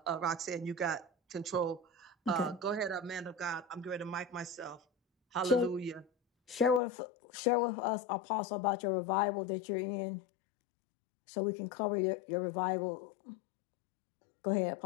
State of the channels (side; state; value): right; drops out; at 6.8 s